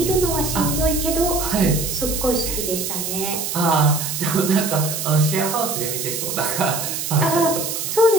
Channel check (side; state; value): right; noise; hiss, 4 dB below the sound